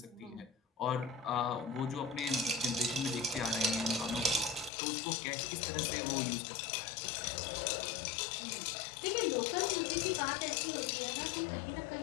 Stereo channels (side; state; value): right; drops out; at 4.7 s